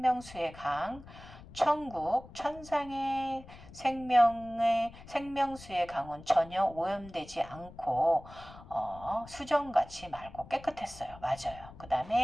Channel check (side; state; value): left; noise; rumble, 18 dB below the sound